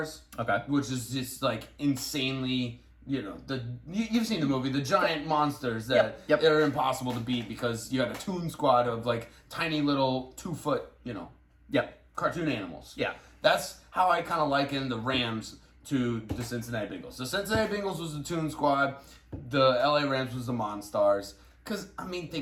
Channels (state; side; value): identical; both; correlation 1.00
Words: Okay. which is just like insanely. You've seen the movie, the giant monsters that Yep. are impossible to beat because you had a toon squad of like tiny little 2-foot, Yep. cartoon animals. Yeah. That's how I kind of liken the Rams to the Cincinnati Bengals. The Cincinnati Bengals was the toon squad, the LA Rams was the Monstars. Because, I mean,